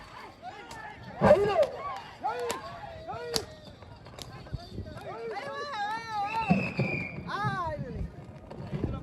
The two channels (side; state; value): both; identical; correlation 1.00